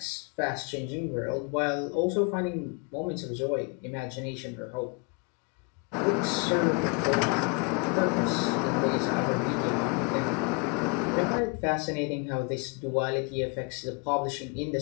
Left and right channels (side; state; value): right; quieter; 33.4 dB